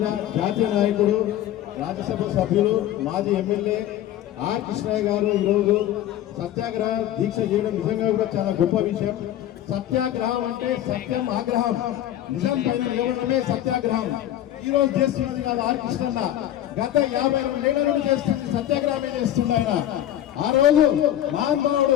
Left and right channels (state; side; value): quieter; right; 12.2 dB